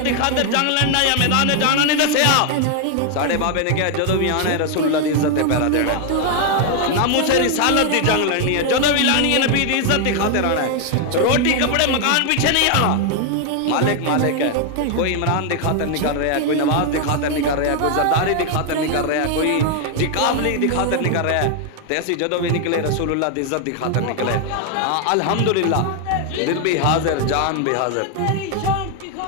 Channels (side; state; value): both; different; correlation 0.00